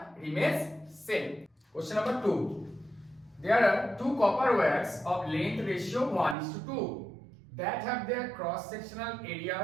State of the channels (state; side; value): drops out; left; at 6.4 s